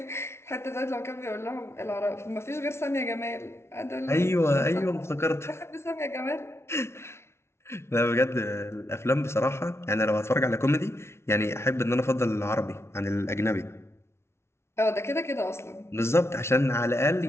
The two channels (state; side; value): late; right; 0.13 ms